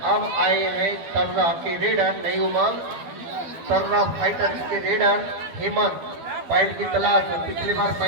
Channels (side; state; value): left; late; 12 ms